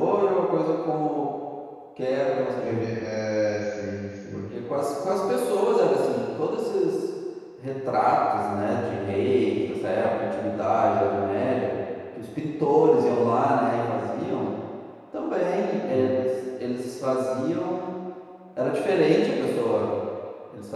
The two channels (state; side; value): identical; both; correlation 1.00